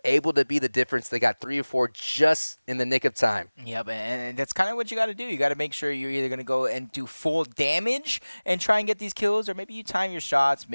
able to be the difference. They got 3 or 4 just in the nick of time. Yep, and that's kind of what you got to do. You got to make sure you're either going to go and do full damage and try and get these kills, or maybe you time your shots,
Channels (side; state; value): both; inverted; correlation -1.00